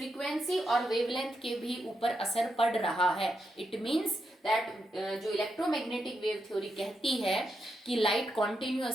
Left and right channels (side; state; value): both; normal; correlation 0.84